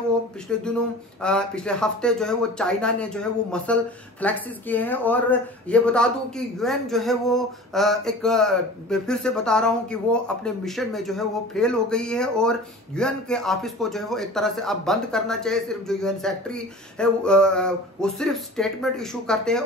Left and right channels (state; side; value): normal; both; correlation 0.39